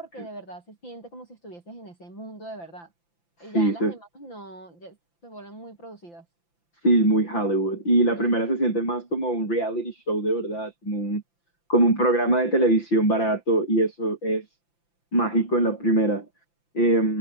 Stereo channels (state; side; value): late; right; 5.9 ms